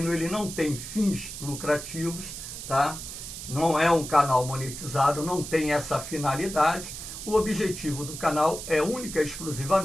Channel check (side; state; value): right; noise; hiss, 9 dB below the sound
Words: ele não tem fins lucrativos, tá? Não é um canal monetizado, não tem essa finalidade. O objetivo do canal é única e